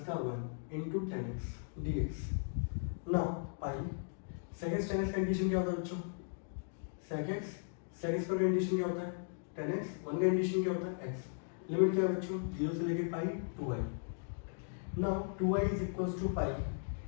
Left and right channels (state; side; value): silent; right; digital silence